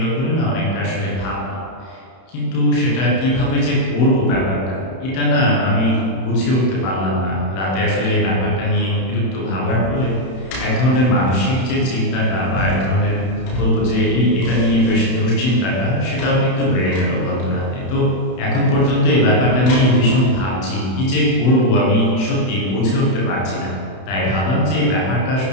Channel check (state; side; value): late; right; 31 ms